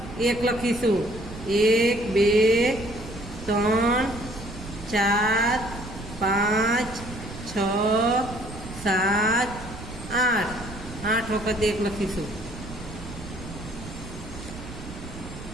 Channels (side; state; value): right; noise; rumble, 12 dB below the sound